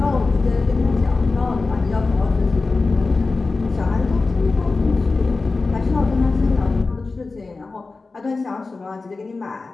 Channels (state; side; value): quieter; right; 3.8 dB